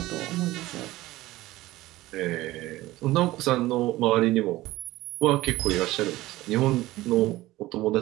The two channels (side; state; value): left; quieter; 17.5 dB